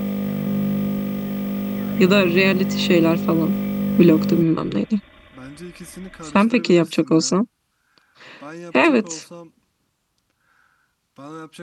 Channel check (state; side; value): identical; both; correlation 1.00